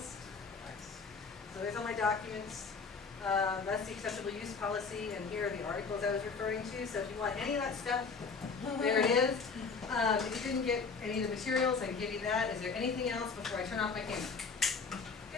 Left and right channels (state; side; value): quieter; right; 4.9 dB